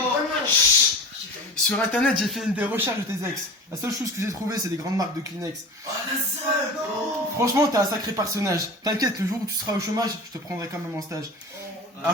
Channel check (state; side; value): normal; both; correlation 0.34